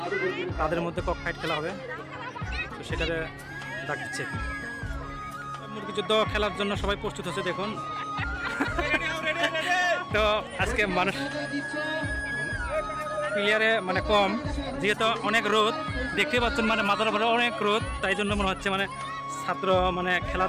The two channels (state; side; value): identical; both; correlation 1.00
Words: তাদের মধ্যে কক ফাইট খেলা হবে। তো সেটারে ডাক দিচ্ছে। মুরগি যুদ্ধ খেলার জন্য সবাই প্রস্তুত হচ্ছে দেখুন। তো আজকে মানুষ প্লেয়ারে মানে কম, যেহেতু অনেক রোদ দেখতে পাচ্ছেন, মানে মাথার উপরে অনেক রোদ, তাই জন্য মনে হচ্ছে মানে ছাত্র মানে